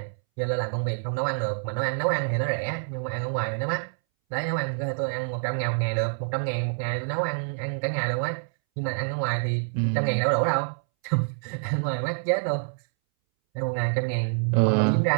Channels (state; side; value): silent; left; 60 dB below the other